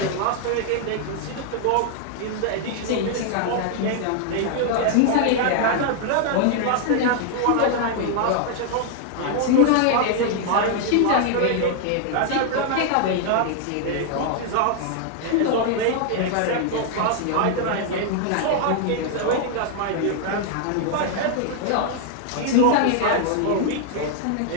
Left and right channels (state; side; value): different; both; correlation 0.00